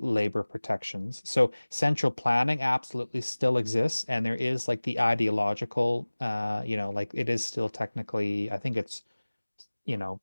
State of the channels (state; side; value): inverted; both; correlation -1.00